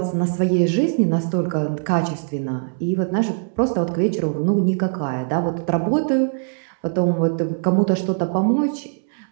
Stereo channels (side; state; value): left; silent; digital silence